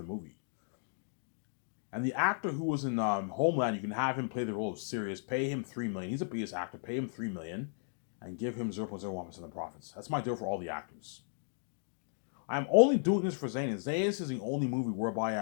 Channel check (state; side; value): silent; right; digital silence